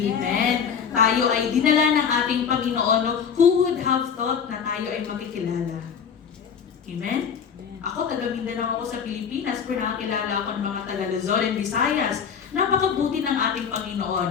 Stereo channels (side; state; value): right; quieter; 7.0 dB